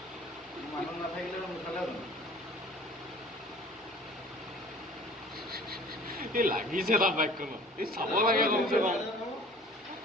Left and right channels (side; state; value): both; normal; correlation 0.48